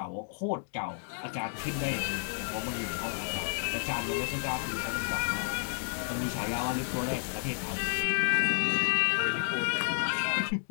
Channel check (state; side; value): silent; right; digital silence